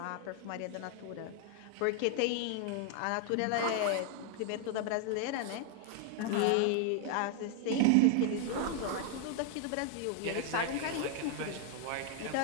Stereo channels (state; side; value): different; both; correlation 0.00